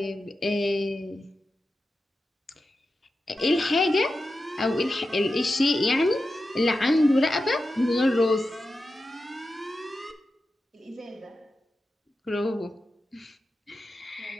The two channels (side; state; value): both; normal; correlation 0.91